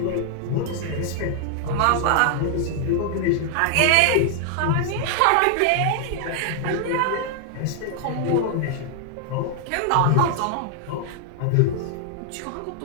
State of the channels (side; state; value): both; different; correlation 0.00